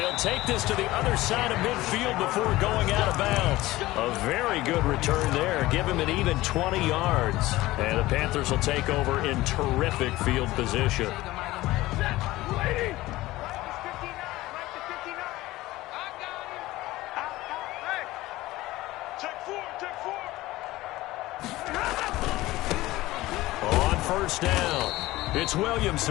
take this to the other side of midfield before going out of bounds. A very good return there. Give him an even 20 yards. And the Panthers will take over in terrific field position. On first down, it's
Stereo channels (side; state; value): right; quieter; 17.9 dB